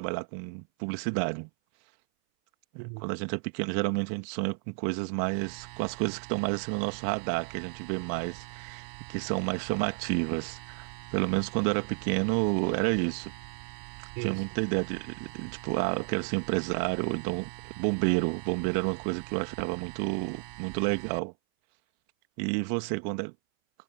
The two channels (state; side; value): silent; left; 57 dB below the other